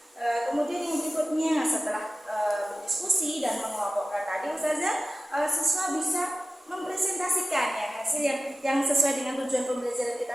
kemudian yang berikutnya setelah berdiskusi dan mengelompokkan tadi, Ustazah, siswa bisa mempresentasikan ya hasil yang sesuai dengan tujuan pembelajaran kita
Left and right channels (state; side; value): normal; both; correlation 0.95